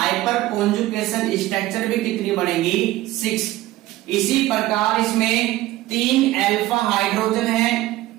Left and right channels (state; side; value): quieter; left; 16.3 dB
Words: कॉन्जुगेशन स्ट्रक्चर भी कितनी बनेगी? 6। इसी प्रकार इसमें 3 अल्फा हाइड्रोजन है,